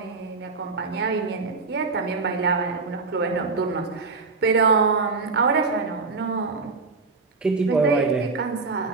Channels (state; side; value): quieter; left; 4.2 dB